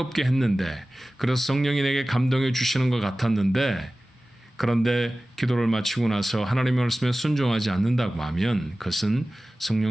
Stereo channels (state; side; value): normal; both; correlation 0.97